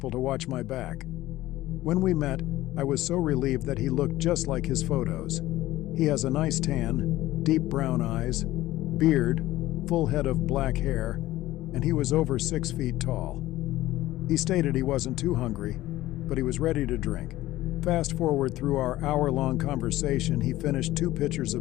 to watch my back. When we met, I was so relieved that he looked just like his photos. He has a nice tan, deep brown eyes, beard, full head of black hair, and he was over 6 feet tall. He stated he wasn't too hungry, but he was ready to drink. Fast forward through our hour-long conversation, he finished 2 pitchers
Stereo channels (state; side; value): quieter; right; 16.2 dB